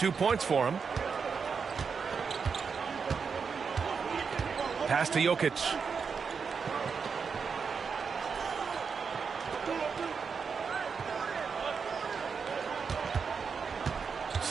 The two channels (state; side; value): quieter; left; 5.8 dB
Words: points for him. Pass to Jokic.